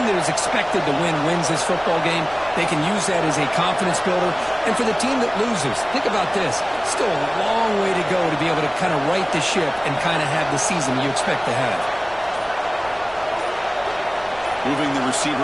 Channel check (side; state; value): right; noise; rumble, 25 dB below the sound